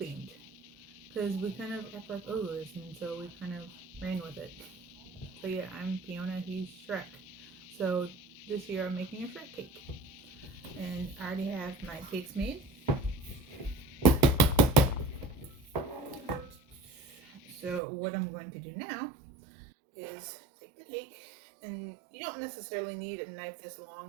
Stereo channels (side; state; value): left; drops out; at 17.8 s